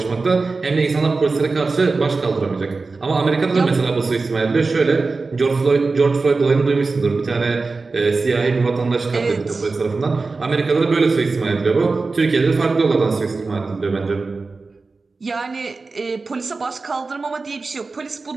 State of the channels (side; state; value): left; quieter; 3.9 dB